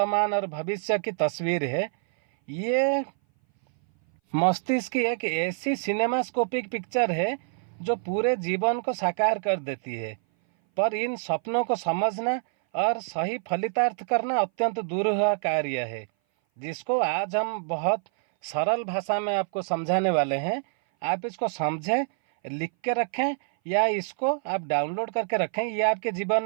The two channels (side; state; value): left; silent; 58 dB below the other